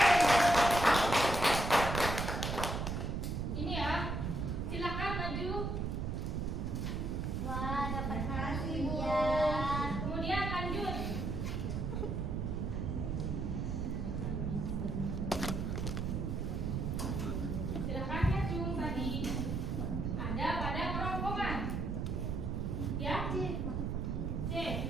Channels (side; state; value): right; noise; rumble, 1 dB below the sound